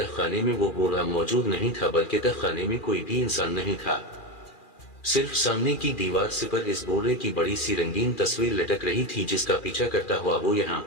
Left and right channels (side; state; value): right; late; 2.4 ms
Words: में वो बूढ़ा मौजूद नहीं था, बल्कि तहखाने में कोई भी इंसान नहीं था। صرف سامنے کی دیوار سے پر اس بورے کی بڑی سی رنگین تصویر لٹک رہی تھی جس کا پیچھا کرتا ہوا وہ یہاں